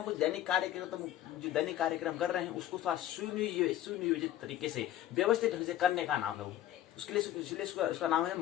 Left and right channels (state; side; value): quieter; right; 12.9 dB